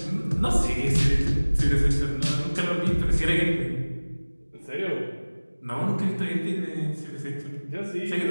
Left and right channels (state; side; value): inverted; both; correlation -1.00